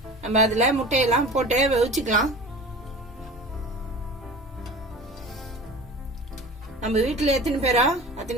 நம்ம அதுல முட்டையெல்லாம் போட்டு வேவிச்சுக்கலாம். நம்ம வீட்டுல எத்தனை பேரோ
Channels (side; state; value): both; normal; correlation 0.38